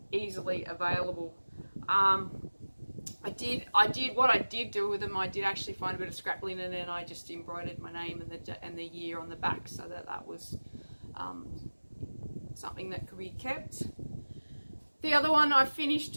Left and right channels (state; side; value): inverted; both; correlation -1.00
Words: easily available. What I did do with them, I did actually find a bit of scrap linen, and I just embroidered my name and the year on the back, so that was something that could be kept. The other one I